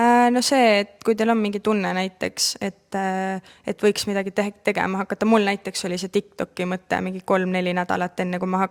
No see, et kui teil on mingi tunne näiteks, et võiks midagi tegema hakata, mul näiteks oli see TikToki mõte mingi 3-4 nädalat enne, kui ma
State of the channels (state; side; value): identical; both; correlation 1.00